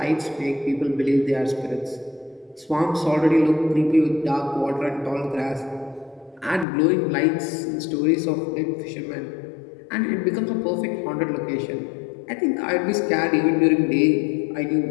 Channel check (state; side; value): drops out; right; at 6.7 s